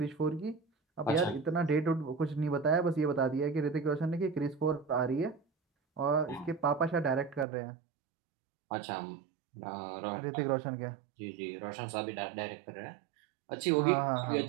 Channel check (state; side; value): drops out; left; at 7.5 s